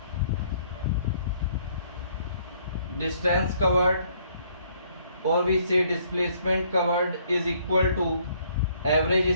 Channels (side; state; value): both; inverted; correlation -0.65